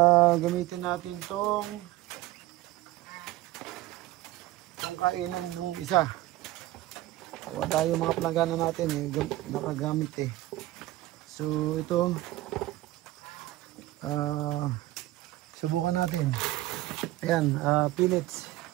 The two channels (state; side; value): quieter; left; 17.0 dB